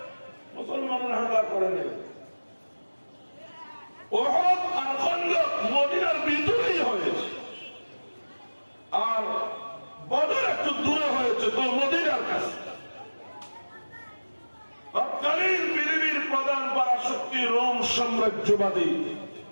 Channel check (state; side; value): inverted; both; correlation -1.00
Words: মুসলমানরা হামলা করেনি। ওহদ আর খন্দক মদিনার ভিতরেই হয়েছে, আর বদর একটু দূরে হয়েছে তো মদিনার কাছে। তৎকালীন পৃথিবীর প্রধান পরাশক্তি রোম সাম্রাজ্যবাদী,